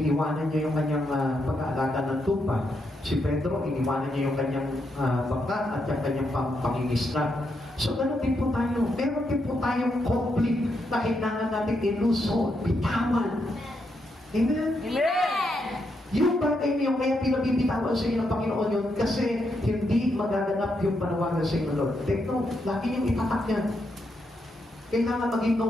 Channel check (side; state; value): both; normal; correlation 0.81